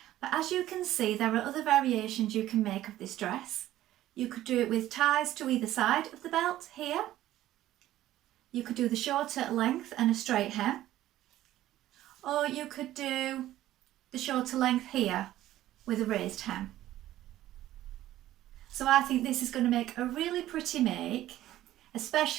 But as you can see, there are other variations you can make of this dress. You could do it with ties to either side of the belt here. You could do the shorter length and a straight hem, or you could do the shorter length here with a raised hem. So I think this is going to make a really pretty make,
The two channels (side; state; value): left; quieter; 14.0 dB